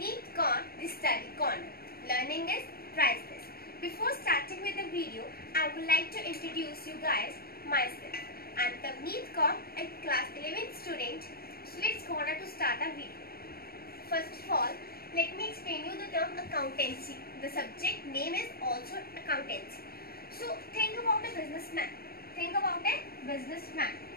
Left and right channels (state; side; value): late; right; 0.44 ms